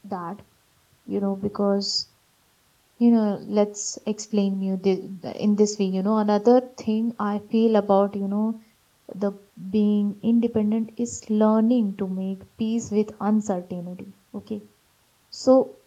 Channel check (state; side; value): identical; both; correlation 1.00